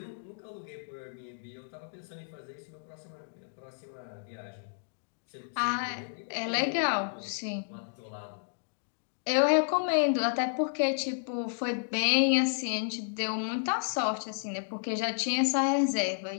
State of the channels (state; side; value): silent; right; digital silence